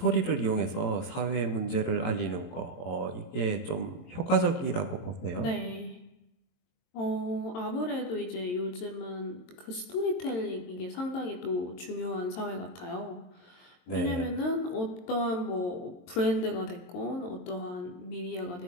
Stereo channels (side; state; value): right; late; 22 ms